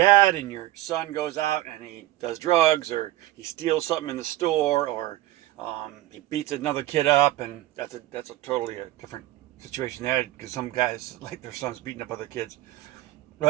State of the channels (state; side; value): quieter; left; 16.0 dB